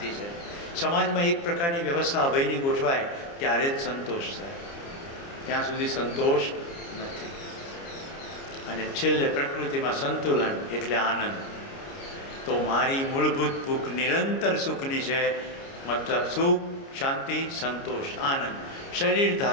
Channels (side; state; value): right; late; 29 ms